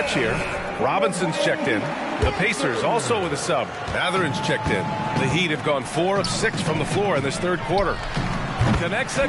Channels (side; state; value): both; identical; correlation 1.00